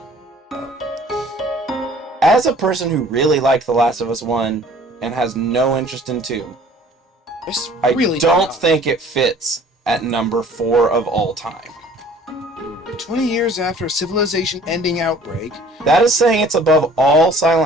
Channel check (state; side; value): normal; both; correlation 0.52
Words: As a person who really liked The Last of Us 1 and has no interest in 2, I Really don't think it fits at number 4 of all time. 20 years after a civilization-ending outbreak, That is saying it's above all